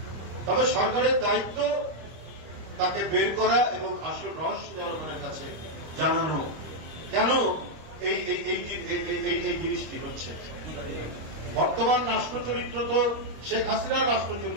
তবে সরকারের দায়িত্ব তাকে বের করা এবং আসল রহস্য জনগণের কাছে জানানো, কেন এই জিনিসটি হচ্ছে। বর্তমান রাষ্ট্র চরিত্র তো শেখ হাসিনার রাষ্ট্র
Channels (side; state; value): left; late; 26 ms